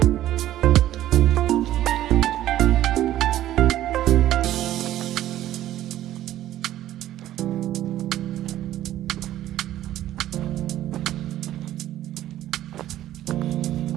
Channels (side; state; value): left; quieter; 13.2 dB